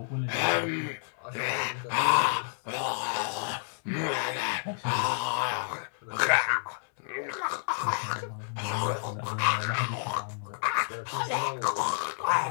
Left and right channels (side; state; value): right; silent; 58 dB below the other